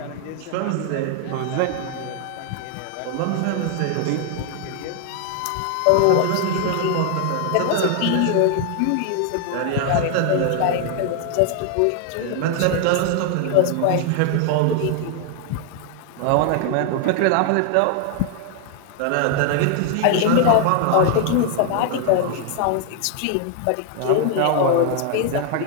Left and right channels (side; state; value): both; different; correlation 0.00